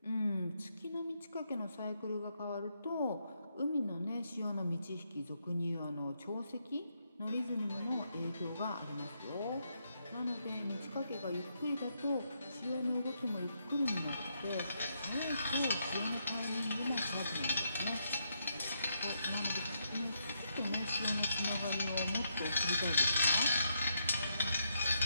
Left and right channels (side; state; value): both; inverted; correlation -0.78